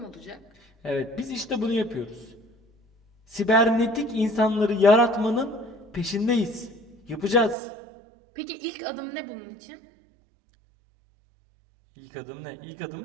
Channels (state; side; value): drops out; left; at 7.6 s